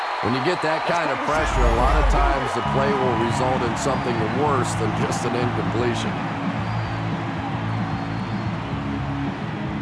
When you get that kind of pressure, a lot of times the play will result in something worse than just an incompletion.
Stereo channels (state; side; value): identical; both; correlation 1.00